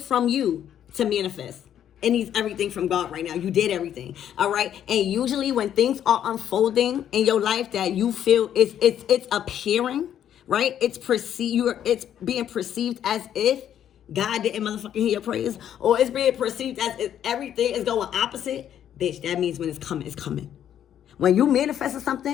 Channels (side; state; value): right; quieter; 10.1 dB